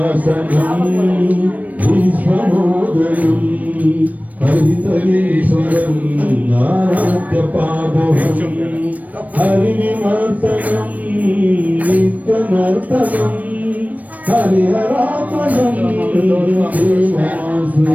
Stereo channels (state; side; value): late; left; 0.073 ms